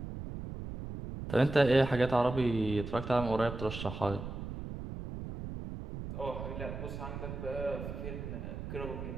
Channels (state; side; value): noise; right; rumble, 8 dB below the sound